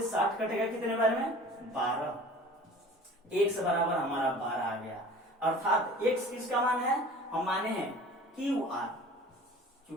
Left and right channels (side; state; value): both; normal; correlation 0.44